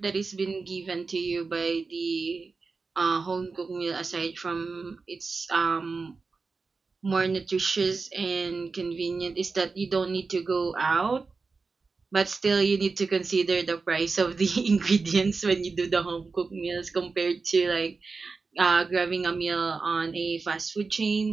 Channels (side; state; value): left; quieter; 4.3 dB